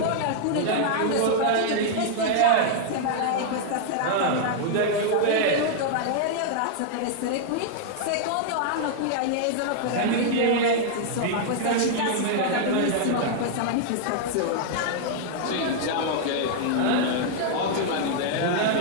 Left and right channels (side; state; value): both; different; correlation -0.01